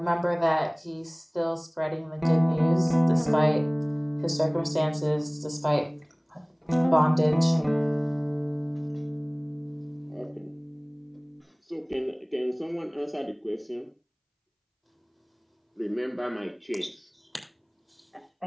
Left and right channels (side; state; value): both; identical; correlation 1.00